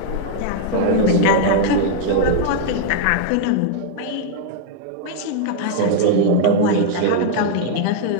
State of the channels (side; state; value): both; different; correlation 0.00